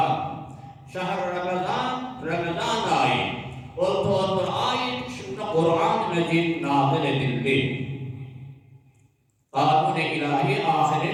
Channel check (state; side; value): identical; both; correlation 1.00